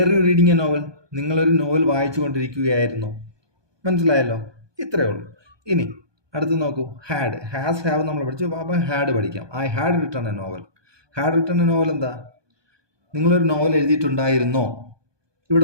you reading a novel. നിങ്ങളൊരു നോവൽ വായിച്ചു കൊണ്ടിരിക്കുകയായിരുന്നു. മനസ്സിലായല്ലോ? ഇത്രയേ ഉള്ളൂ. ഇനി അടുത്ത് നോക്കൂ, ഹാഡ്. ഹാസ് ഹാവ് നമ്മൾ പഠിച്ചു. അപ്പം ഹാഡ് പഠിക്കാം. I had written a novel. Had written a novel എന്താ? നിങ്ങളൊരു നോവൽ എഴുതിയിട്ടുണ്ടായിരുന്നോ?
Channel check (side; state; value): left; late; 1.2 ms